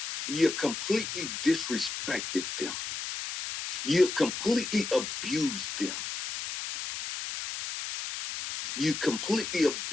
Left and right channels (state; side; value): noise; left; hiss, 5 dB below the sound